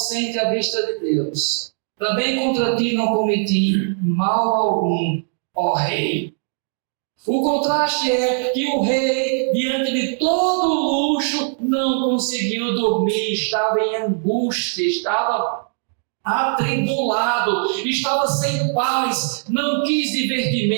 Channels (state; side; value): silent; left; 65 dB below the other